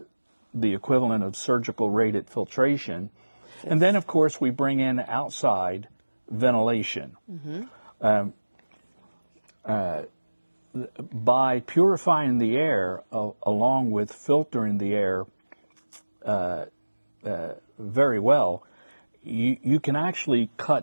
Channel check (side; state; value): both; inverted; correlation -1.00